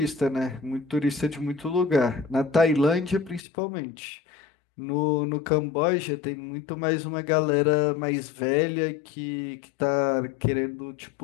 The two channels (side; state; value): right; drops out; at 3.4 s